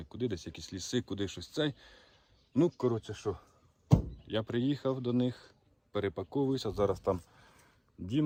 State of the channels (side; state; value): both; identical; correlation 1.00